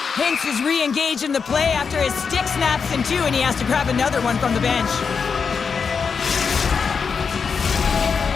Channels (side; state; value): right; quieter; 5.8 dB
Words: Hinks is re-engaged in the play after his stick snaps in two, and he has to grab another one from the bench.